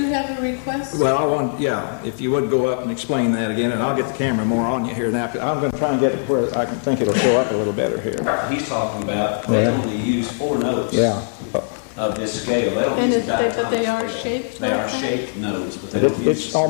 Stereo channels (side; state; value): right; silent; digital silence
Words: have a request? Well, if you would go up and explain that again, and I'll get the camera more on you here now. I'm gonna try and get it where I can think it'll show up a little better here. He's talking about, they Yeah. only use 4 notes Yeah. of this scale. They don't And use but they are diatonic scale. shaped They like are that? shaped notes, but they don't use. It's